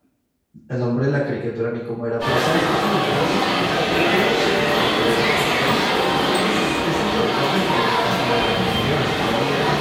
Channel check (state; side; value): identical; both; correlation 1.00